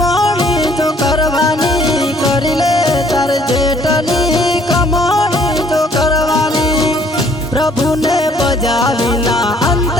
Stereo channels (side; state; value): both; normal; correlation 0.60